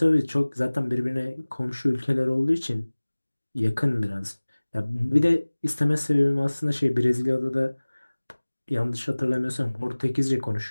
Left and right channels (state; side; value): inverted; both; correlation -1.00